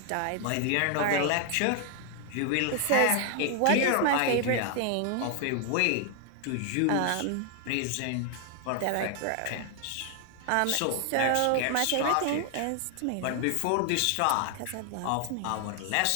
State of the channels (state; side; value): different; both; correlation 0.00